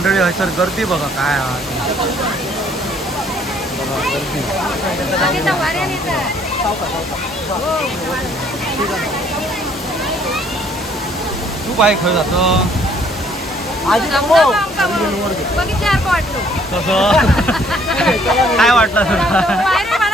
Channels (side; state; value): both; normal; correlation 0.62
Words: हसर गर्दी बघा काय आहे. बघा गर्दी. तू बाय खरं जातो बघितल्यासारखं वाटलं. कसं काय वाटलं तुला? पायऱ्या